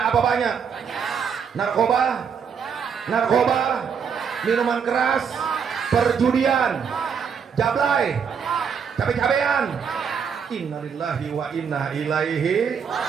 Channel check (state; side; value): quieter; left; 6.8 dB